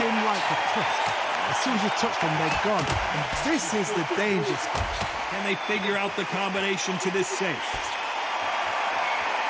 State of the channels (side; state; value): both; identical; correlation 1.00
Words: like a cliff. As soon as you touch them, they're gone. And this is the danger spot. Can they figure out the combination to this safe?